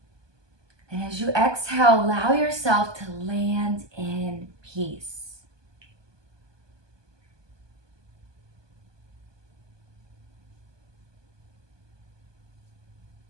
And as you exhale, allow yourself to land in peace.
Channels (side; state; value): left; late; 1.2 ms